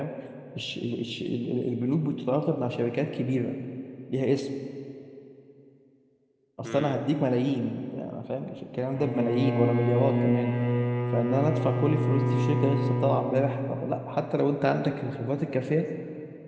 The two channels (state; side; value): identical; both; correlation 1.00